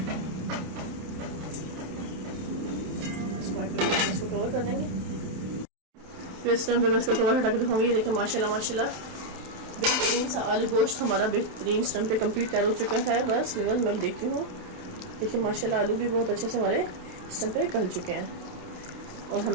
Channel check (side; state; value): left; late; 27 ms